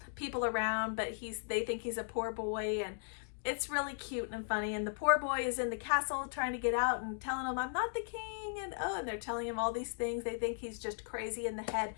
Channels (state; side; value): silent; right; digital silence